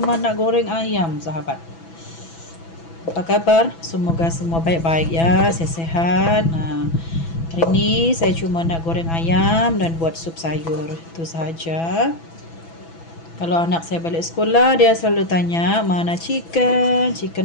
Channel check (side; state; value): right; late; 6.0 ms